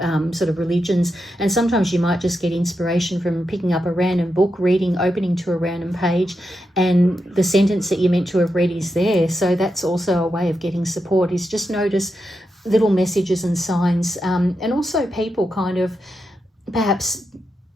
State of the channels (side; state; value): both; normal; correlation 0.86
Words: sort of religions. And sometimes you might just get inspiration from picking up a random book, opening to a random page, and the sentence that you're meant to have read is there. So that's also a way of getting support, is just notice little messages and signs, and also people kind of perhaps,